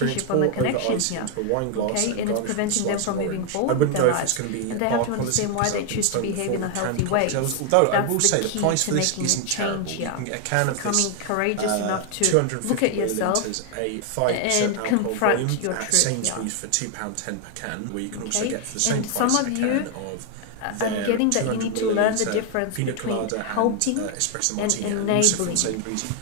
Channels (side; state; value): both; different; correlation 0.00